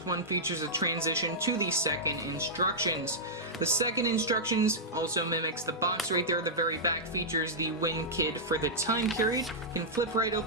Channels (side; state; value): both; normal; correlation -0.11